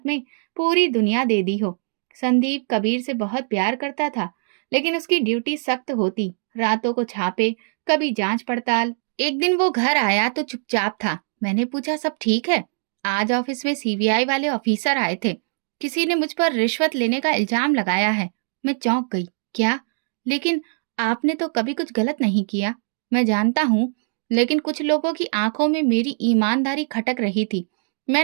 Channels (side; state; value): left; silent; digital silence